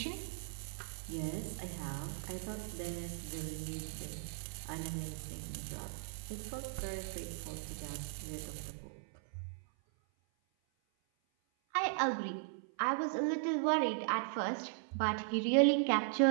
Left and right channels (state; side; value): silent; left; 52 dB below the other